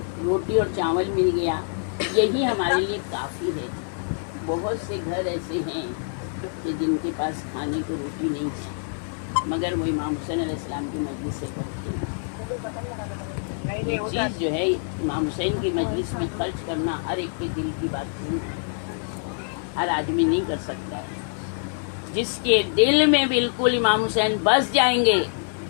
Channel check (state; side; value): silent; right; 61 dB below the other